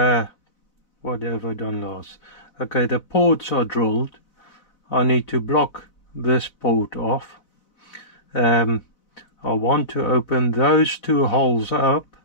What have I done last? Okay, the ports are drilled. I need to block this port off. I want to open those two holes up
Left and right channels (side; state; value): right; late; 4.0 ms